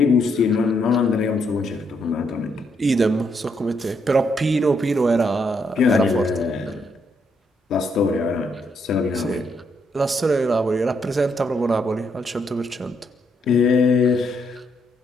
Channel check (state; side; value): normal; both; correlation 0.76